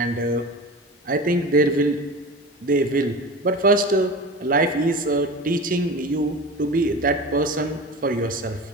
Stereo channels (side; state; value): both; normal; correlation 0.32